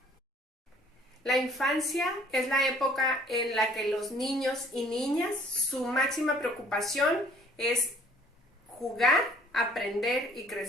La infancia es la época en la que los niños y niñas, su máxima preocupación es jugar, aprender y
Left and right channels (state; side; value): normal; both; correlation 0.56